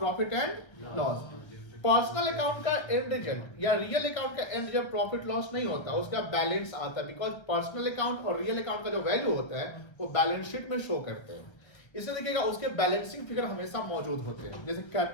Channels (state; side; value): late; right; 1.3 ms